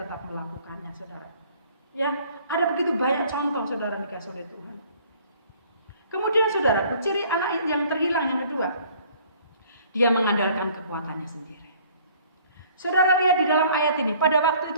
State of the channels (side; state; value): both; inverted; correlation -0.55